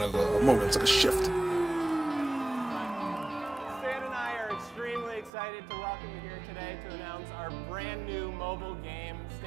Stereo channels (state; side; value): drops out; left; at 5.3 s